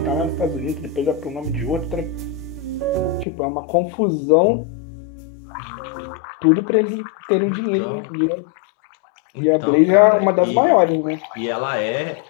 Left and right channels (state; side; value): drops out; right; at 3.2 s